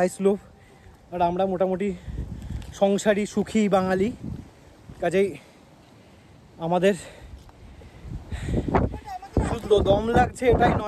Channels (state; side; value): identical; both; correlation 1.00